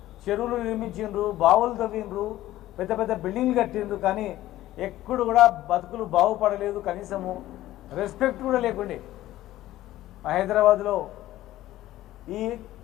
చెరువులు నిర్మించిండ్రు, బావులు తవ్విండ్రు, పెద్ద పెద్ద బిల్డింగ్లు కట్టిండ్రు. కానీ ఎప్పుడు కూడా బతుకులు బాగుపడలేదు, కనీసము రెస్పెక్ట్ కూడా లేకుండే. హైదరాబాద్లో ఈ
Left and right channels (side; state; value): right; quieter; 14.9 dB